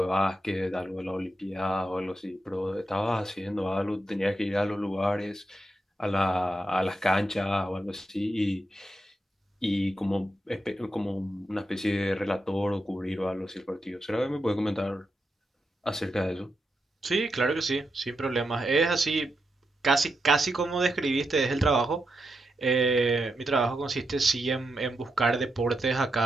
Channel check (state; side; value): normal; both; correlation 0.85